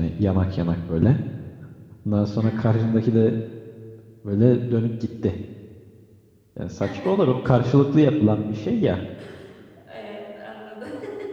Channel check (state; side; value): identical; both; correlation 1.00